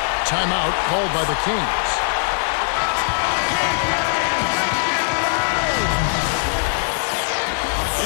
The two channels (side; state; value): right; silent; digital silence